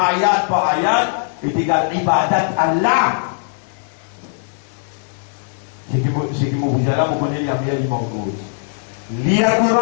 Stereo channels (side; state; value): right; silent; 58 dB below the other